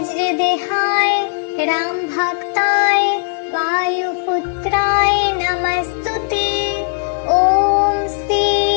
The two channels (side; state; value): right; silent; digital silence